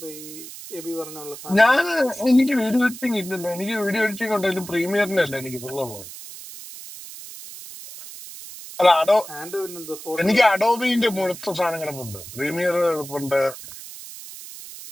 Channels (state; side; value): noise; right; hiss, 14 dB below the sound